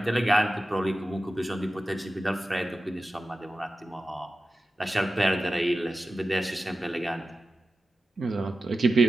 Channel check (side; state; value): both; normal; correlation 0.93